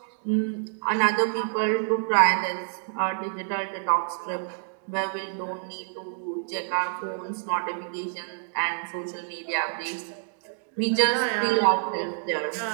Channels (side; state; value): left; silent; digital silence